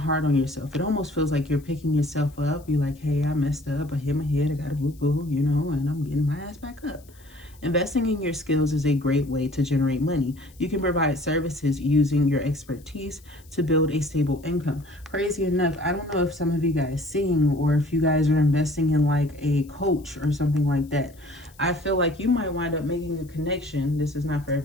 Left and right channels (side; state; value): left; noise; hiss, 27 dB below the sound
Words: on yourself. It almost feels like you're picking yourself up. You're like, hey, I messed up. I hit my head. I got a boo-boo, you know, and I'm getting my ass back up. Investing in your skills is a great way to generate money. You can provide services using your expertise to build a stable income. Crazy enough, I don't know if some of you guys sing, or if you guys are investing in like a coach or something like that. I feel like you might wind up making a connection. This is not for